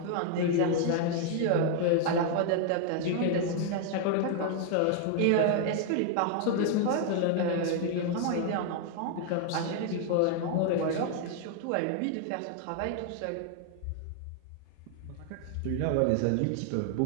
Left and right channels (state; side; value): different; both; correlation 0.00